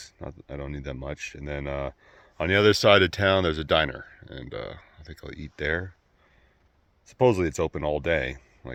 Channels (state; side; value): identical; both; correlation 1.00